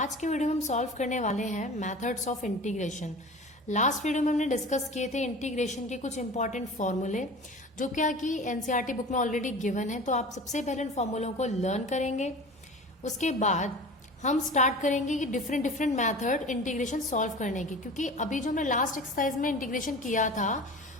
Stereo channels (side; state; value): both; normal; correlation 0.37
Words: के वीडियो में हम सॉल्व करने वाले हैं methods of integration. Last video में हमने डिस्कस किए थे इंटीग्रेशन के कुछ इंपॉर्टेंट फॉर्मूले, जो क्या कि एनसीईआरटी बुक में ऑलरेडी गिवन है। तो आप सबसे पहले इन फॉर्मूलों को लर्न करेंगे। उसके बाद हम स्टार्ट करेंगे कि डिफरेंट मैथड इंटीग्रेशन सॉल्व करने की, क्योंकि अभी जो हमने लास्ट एक्सरसाइज में इंटीग्रेशन किया था